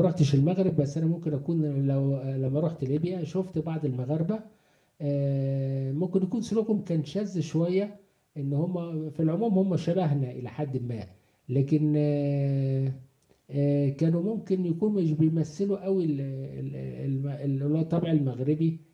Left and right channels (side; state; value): both; identical; correlation 1.00